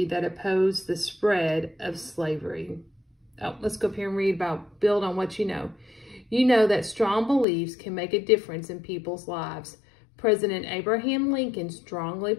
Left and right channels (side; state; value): right; drops out; at 7.5 s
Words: that opposed the spread of slavery. Oh, let's go up here and read about, build on what you know. You know that strong beliefs can make a difference in people's lives. President Abraham Lincoln strongly